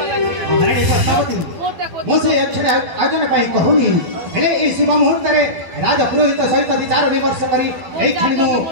पद्मावती मो से अक्षर आयोजन पाई कहूनी। हेले ए शुभ मुहूर्त रे राज पुरोहित सहित विचार विमर्श करी एई क्षणी मो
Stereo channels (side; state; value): left; late; 12 ms